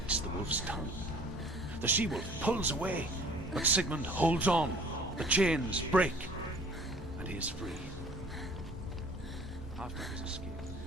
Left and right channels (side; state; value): both; normal; correlation 0.51